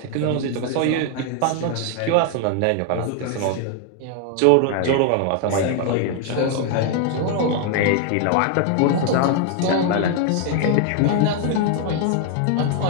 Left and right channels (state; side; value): different; both; correlation 0.00